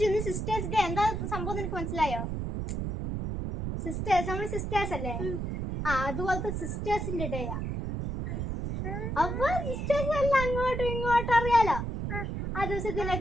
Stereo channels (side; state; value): right; noise; rumble, 3 dB below the sound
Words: സിസ്റ്റേഴ്സ് ഡേ എന്താ സംഭവം നിനക്ക് മനസ്സിലായോ? സിസ്റ്റേഴ്സ് നമ്മൾ സിസ്റ്റേഴ്സ് അല്ലേ? അതുപോലത്തെ സിസ്റ്റേഴ്സിന്റെ ഡേയാ. അപ്പൊ സിസ്റ്റേഴ്സ് എല്ലാം അങ്ങോട്ടും ഇങ്ങോട്ടും അറിയാലോ ആ